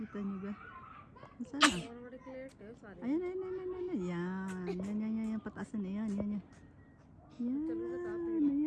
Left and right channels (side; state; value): both; identical; correlation 1.00